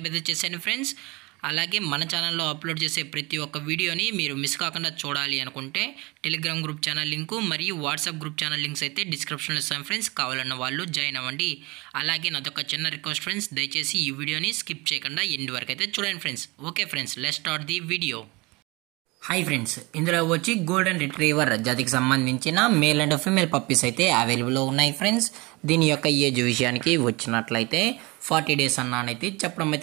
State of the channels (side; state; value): left; quieter; 24.7 dB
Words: అయితే చేసేయండి ఫ్రెండ్స్. అలాగే మన ఛానల్లో అప్లోడ్ చేసే ప్రతి ఒక్క వీడియోని మీరు మిస్ కాకుండా చూడాలి అనుకుంటే టెలిగ్రామ్ గ్రూప్ ఛానల్ లింకు మరియు వాట్సాప్ గ్రూప్ ఛానల్ లింక్స్ అయితే డిస్క్రిప్షన్లో ఇస్తాను ఫ్రెండ్స్. కావాలన్న వాళ్ళు జాయిన్ అవ్వండి. అలాగే నాదొక చిన్న రిక్వెస్ట్ ఫ్రెండ్స్, దయచేసి ఈ వీడియోని స్కిప్ చేయకుండా ఎండ్ వరకు అయితే చూడండి friends. Okay friends, let's start the video. Hi friends, ఇందులో వచ్చి గోల్డెన్ రిట్రీవర్ జాతికి సంబంధించిన మేల్ అండ్ ఫీమేల్ పప్పీస్ అయితే అవైలబుల్లో ఉన్నాయి ఫ్రెండ్స్. దీని యొక్క ఏజ్ విషయానికి వచ్చినట్లయితే 40 డేస్ అన్నానైతే చెప్పడం